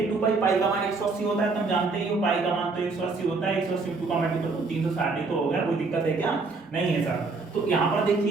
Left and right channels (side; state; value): left; quieter; 4.0 dB